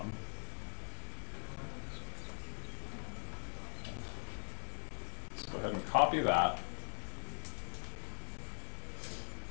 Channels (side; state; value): right; silent; digital silence